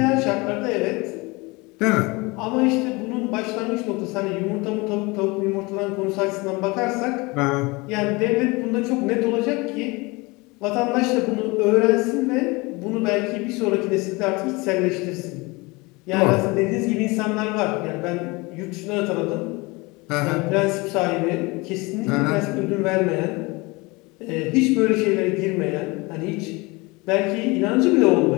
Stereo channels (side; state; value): right; quieter; 24.9 dB